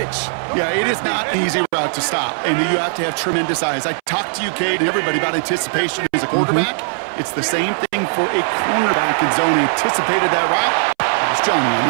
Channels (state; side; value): silent; left; 64 dB below the other